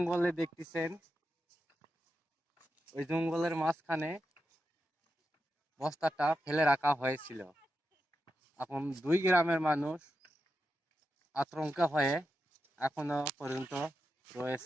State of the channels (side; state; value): both; normal; correlation 0.88